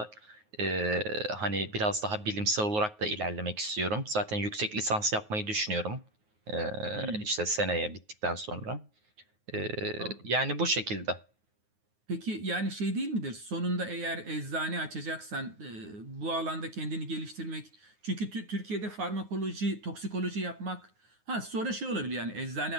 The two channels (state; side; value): late; left; 9.5 ms